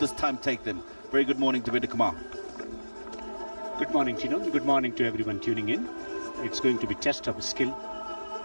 this time take them. Very good morning to Beda Kumar. Good morning, Tino. Good morning to everyone tuning in. It's going to be test of skill,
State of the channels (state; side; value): inverted; both; correlation -1.00